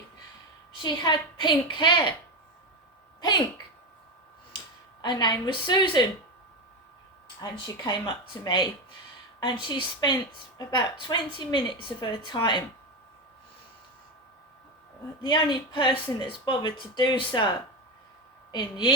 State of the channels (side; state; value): both; normal; correlation 0.15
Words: She had pink hair. Pink. Her name was Susan. And she came up to me and she spent about 20 minutes of her time, the only person that's bothered to do so in